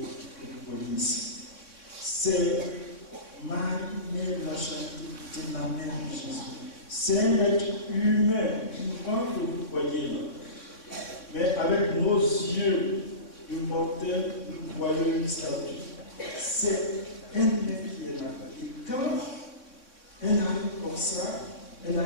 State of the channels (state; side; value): late; right; 3.6 ms